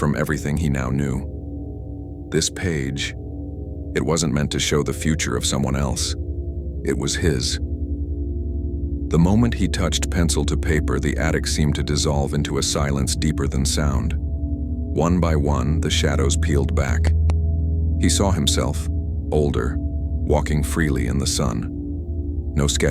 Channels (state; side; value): identical; both; correlation 1.00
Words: everything he now knew. This page, it wasn't meant to show the future of someone else. It was his. The moment he touched pencil to paper, the attic seemed to dissolve into a silence deeper than sound. One by one, the shadows peeled back. He saw himself, older, walking freely in the sun. No